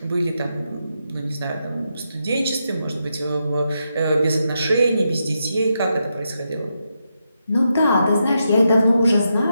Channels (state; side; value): inverted; both; correlation -0.84